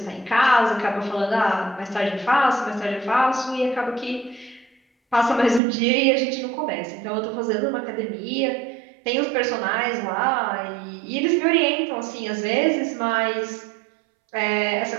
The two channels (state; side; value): drops out; left; at 5.6 s